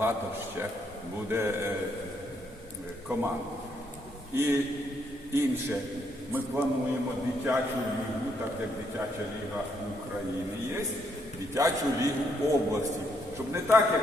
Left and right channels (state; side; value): normal; both; correlation 0.73